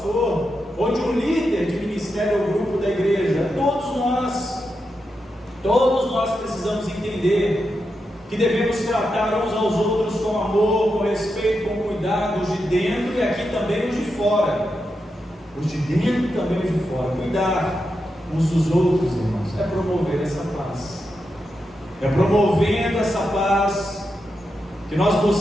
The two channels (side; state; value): both; normal; correlation 0.87